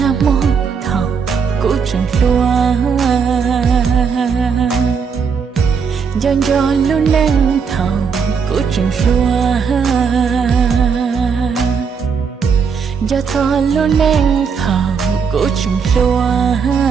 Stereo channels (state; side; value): quieter; left; 6.1 dB